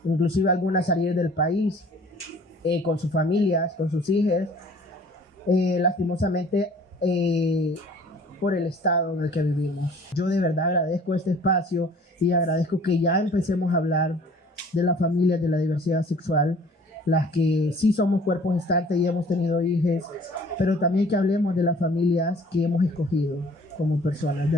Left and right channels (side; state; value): both; normal; correlation 0.51